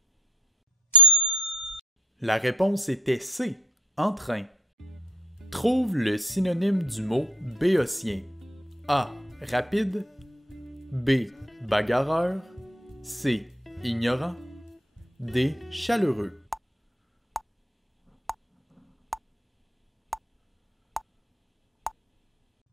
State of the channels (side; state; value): both; normal; correlation 0.57